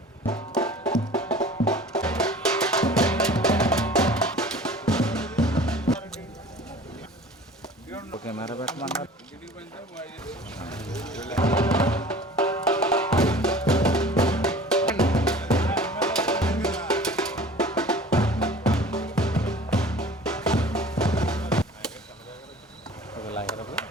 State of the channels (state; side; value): normal; both; correlation 0.45